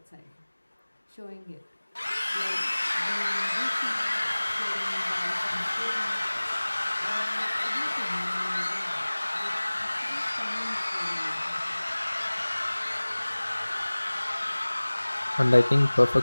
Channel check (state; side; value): inverted; both; correlation -1.00